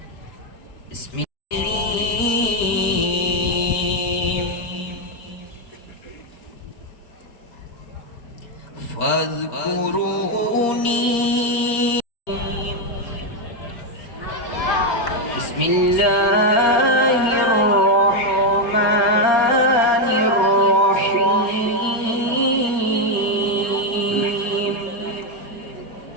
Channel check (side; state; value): right; late; 4.3 ms